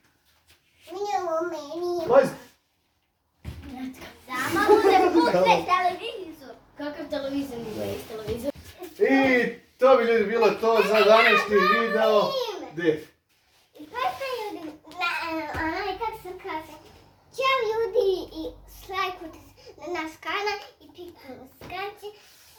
Meni. Majz, Samo ne puste televizor. Kakav televizor nije iz televizor? i to bi ljudi bilo to za današnji video. Gdje? Pa ljudi, kako se kaže, ćao ljudi i lajkujte na naš kanal i pikujte na skraće.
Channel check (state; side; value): identical; both; correlation 1.00